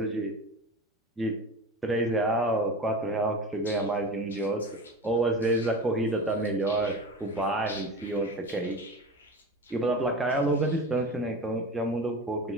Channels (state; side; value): normal; both; correlation 0.31